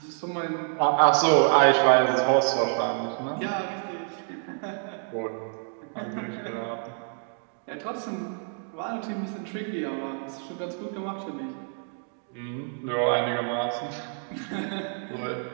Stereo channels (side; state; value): left; silent; 59 dB below the other